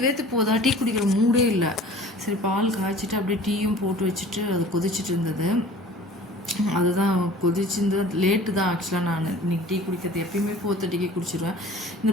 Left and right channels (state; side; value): normal; both; correlation 0.46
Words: போதா, டீ குடிக்கிற மூடே இல்லை. சரி, பால் காய்ச்சிட்டு அப்படியே டீயும் போட்டு வச்சுட்டு அது கொதிச்சுட்டு இருந்தது. அதுதான் கொதிச்சிருந்தது. லேட்டு தான் ஆக்சுவலாக. நான் இன்னைக்கு டீ குடிக்கிறது எப்பயுமே 4:30க்கு குடிச்சிடுவேன்.